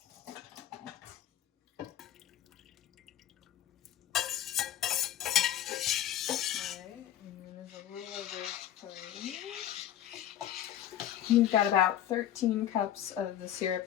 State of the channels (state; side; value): quieter; right; 11.5 dB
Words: We've got about 13 cups of the